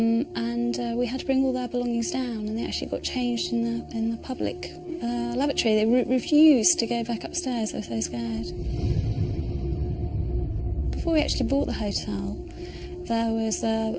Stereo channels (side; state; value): both; identical; correlation 1.00